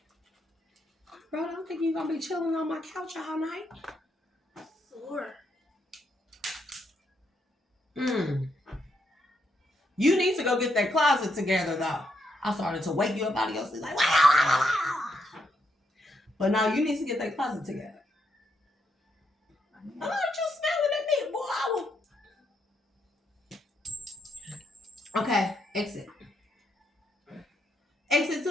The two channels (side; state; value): both; normal; correlation 0.78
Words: Bro, I don't think you're going to be chilling on my couch all night. Sure. You need to go get that closet together, though. I started to wake you up out of your sleep like, wow. But now you need to get that closet together. I know you smelling at me, boy. Okay, exit. Exit to